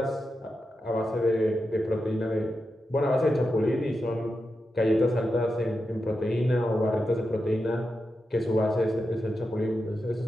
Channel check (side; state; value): both; normal; correlation 0.89